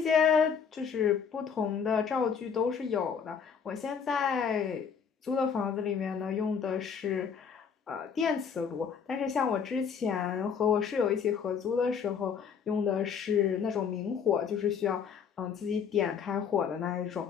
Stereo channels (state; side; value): quieter; right; 6.8 dB